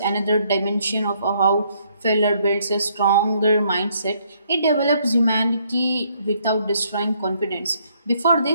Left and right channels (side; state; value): both; inverted; correlation -0.69